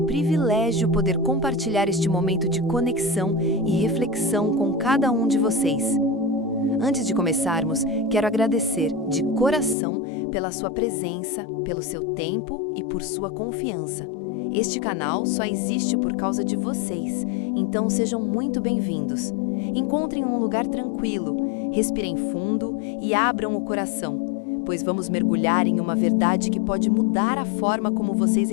privilégio poder compartilhar este momento de conexão e reflexão com cada um de vocês. Antes de começarmos, quero agradecer de coração pela sua presença, pelo seu tempo e por sua confiança. Este canal só existe por causa de vocês, então sejam muito bem-vindos. Encontrem um lugar tranquilo, respirem fundo e abram o coração, pois vamos mergulhar em uma verdade que pode mudar a forma como vocês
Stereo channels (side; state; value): right; drops out; at 9.8 s